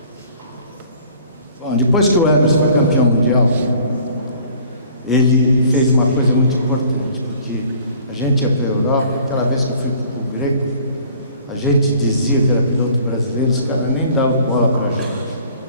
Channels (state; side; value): inverted; both; correlation -0.53